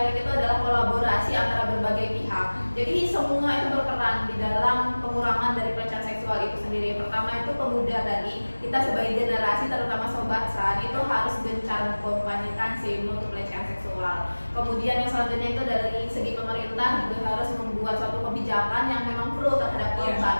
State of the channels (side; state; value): both; inverted; correlation -1.00